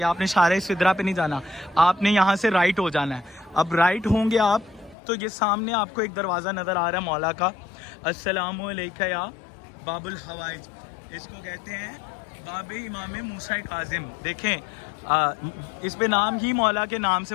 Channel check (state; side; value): drops out; right; at 5.0 s